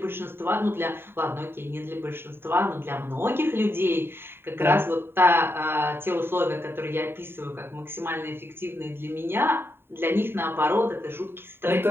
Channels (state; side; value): late; left; 0.11 ms